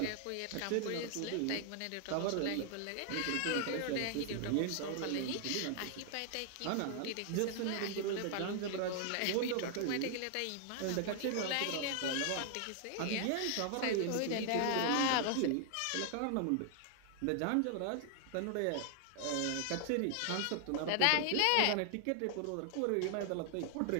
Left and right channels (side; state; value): both; different; correlation 0.00